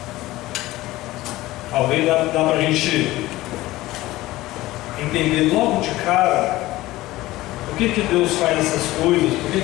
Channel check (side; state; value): right; quieter; 17.6 dB